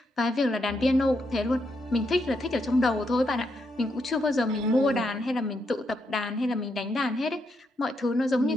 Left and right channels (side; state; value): both; normal; correlation 0.80